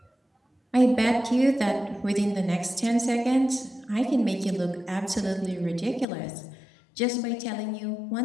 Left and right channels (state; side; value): drops out; right; at 6.1 s